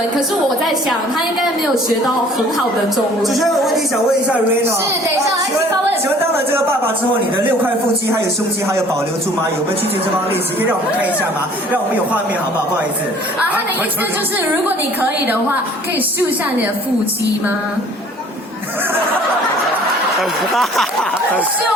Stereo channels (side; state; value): both; normal; correlation 0.53